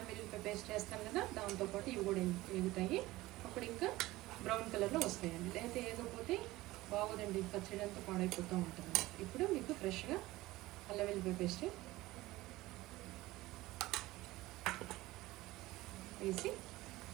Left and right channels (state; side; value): quieter; left; 18.4 dB